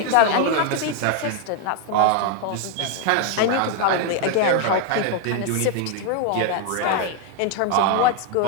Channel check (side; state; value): both; different; correlation 0.01